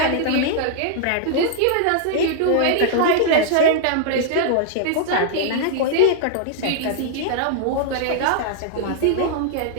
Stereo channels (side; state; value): both; different; correlation -0.01